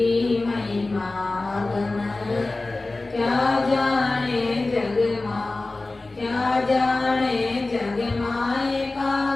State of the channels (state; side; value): quieter; right; 3.2 dB